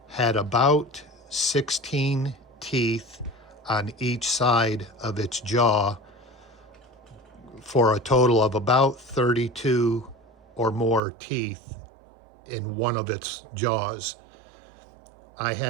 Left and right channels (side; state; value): left; drops out; at 11.0 s